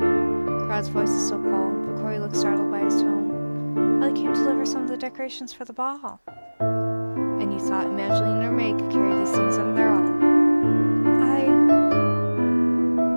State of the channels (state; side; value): inverted; both; correlation -1.00